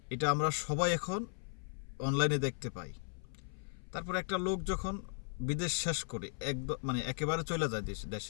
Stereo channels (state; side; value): silent; right; 53 dB below the other